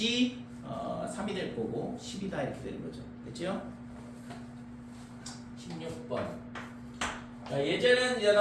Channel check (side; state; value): both; identical; correlation 1.00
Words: 3이 될 거고 10이다 이렇게 되는 거죠. 됐죠? 16번.